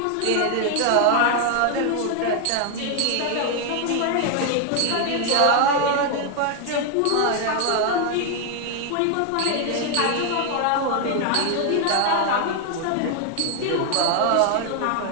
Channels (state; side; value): different; both; correlation 0.00